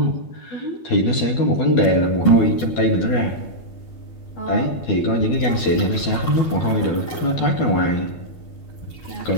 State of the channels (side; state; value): right; late; 12 ms